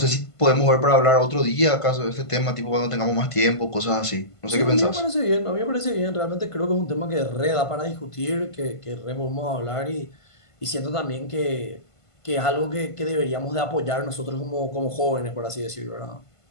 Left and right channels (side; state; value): right; late; 1.5 ms